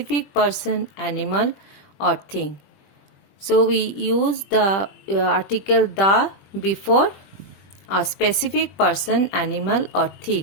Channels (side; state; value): right; late; 20 ms